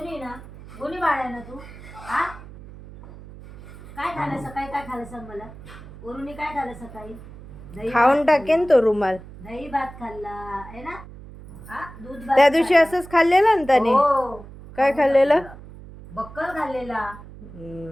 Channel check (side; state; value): right; noise; hum, 17 dB below the sound